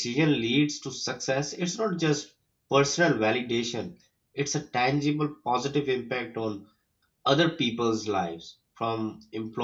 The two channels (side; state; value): both; identical; correlation 1.00